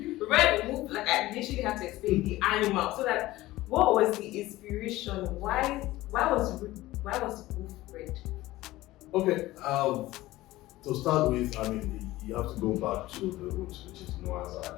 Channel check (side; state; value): right; quieter; 17.4 dB